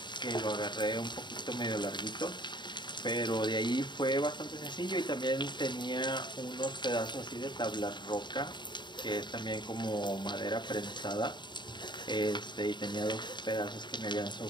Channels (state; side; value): late; right; 0.22 ms